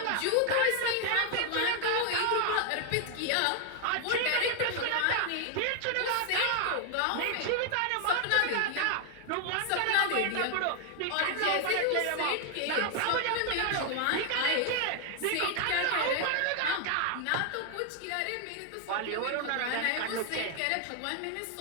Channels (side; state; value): both; different; correlation 0.00